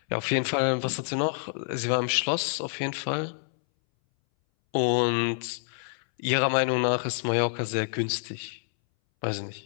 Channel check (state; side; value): silent; right; 60 dB below the other